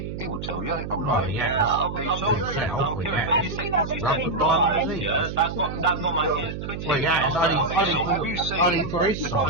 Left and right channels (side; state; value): right; noise; hum, 7 dB below the sound